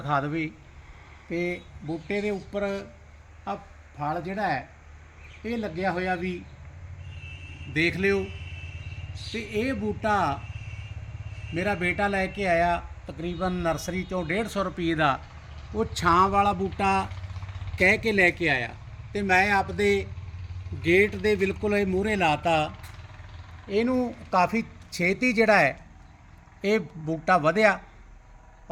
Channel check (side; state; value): both; identical; correlation 1.00